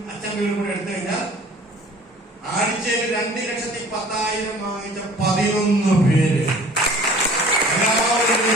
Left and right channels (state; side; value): normal; both; correlation 0.48